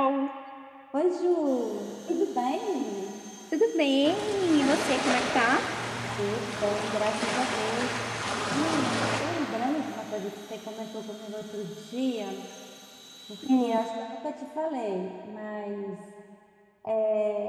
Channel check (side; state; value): both; identical; correlation 1.00